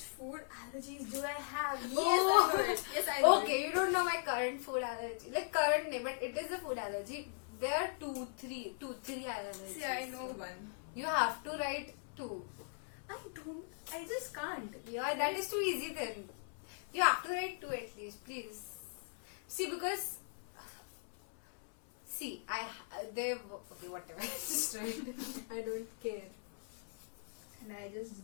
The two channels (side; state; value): right; silent; 52 dB below the other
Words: food allergies do I have? Yes, Oh. I know it. Yes, I know Okay, you don't know my current food allergy. Like current name, but it is a food allergy. There are two, three allergies. it. See, I know one. You have to write 2. I just can't. Yeah, that is too easy then. You have to write 2 at least, please. See, because okay, whatever. Just write. I don't care. And I just